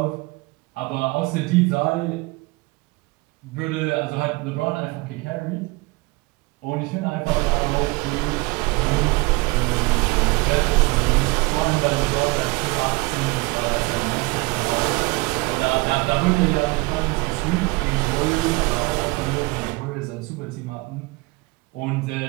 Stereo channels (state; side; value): quieter; left; 24.4 dB